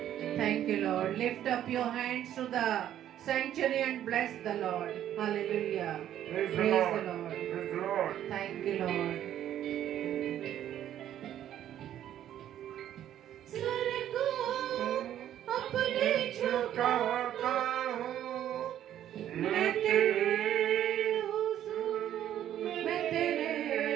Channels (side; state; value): left; quieter; 11.3 dB